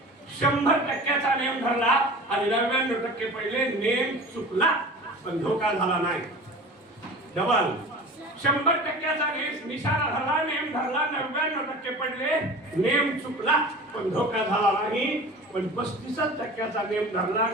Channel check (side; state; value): both; normal; correlation 0.37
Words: 100% नेम धरला आणि 99% पडले. नेम चुकला पण धोका झाला नाही. डबल 100% निशाणा धरला, नेम धरला, 99% पडले. नेम चुकला पण धोका झाला नाही. पण 35% नेम धरला